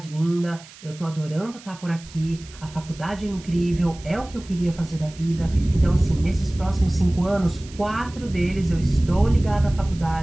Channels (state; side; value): noise; right; hiss, 20 dB below the sound